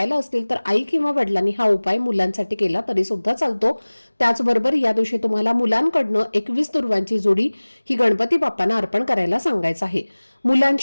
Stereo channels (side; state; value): both; inverted; correlation -1.00